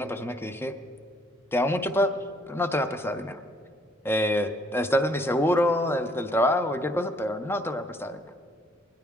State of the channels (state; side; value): normal; both; correlation 0.64